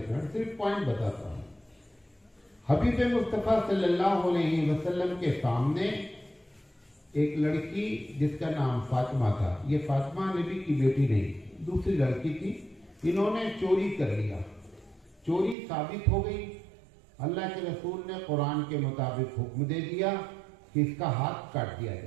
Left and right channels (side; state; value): left; drops out; at 15.6 s